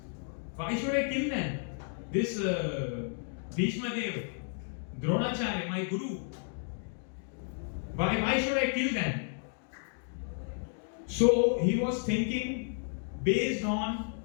Why should I kill them? This Bhishma Dev, Dronacharya, my guru. Why should I kill them? So he was thinking based on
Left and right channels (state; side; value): silent; right; 56 dB below the other